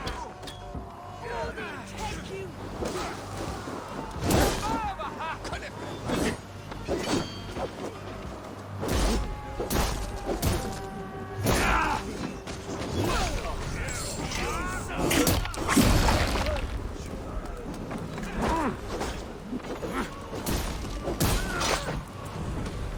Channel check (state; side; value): identical; both; correlation 1.00